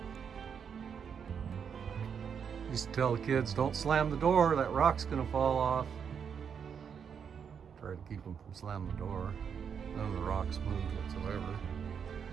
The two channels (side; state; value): left; quieter; 7.1 dB